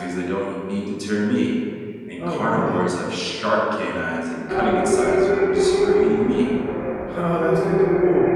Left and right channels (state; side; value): identical; both; correlation 1.00